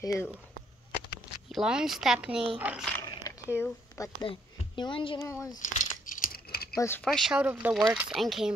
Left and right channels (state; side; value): normal; both; correlation 0.70